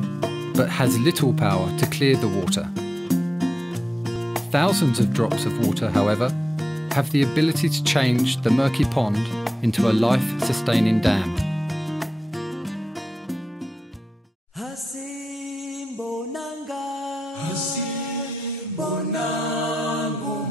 but has little power to clear the water. Thousands of drops of water, however, have the ability to change the murky pond into a life-sustaining dam.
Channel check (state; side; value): normal; both; correlation 0.92